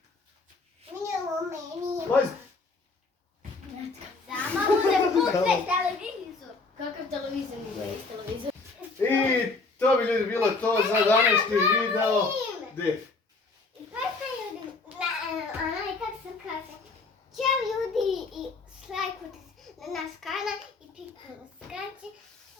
Meni. Majz, Samo ne puste televizor. Kakav televizor nije iz televizor? i to bi ljudi bilo to za današnji video. Gdje? Pa ljudi, kako se kaže, ćao ljudi i lajkujte na naš kanal i pikujte na skraće.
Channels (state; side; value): quieter; right; 3.8 dB